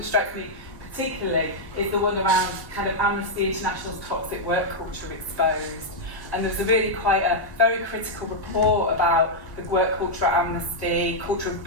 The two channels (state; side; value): normal; both; correlation -0.04